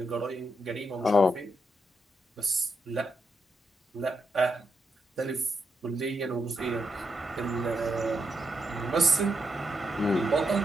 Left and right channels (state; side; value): normal; both; correlation 0.81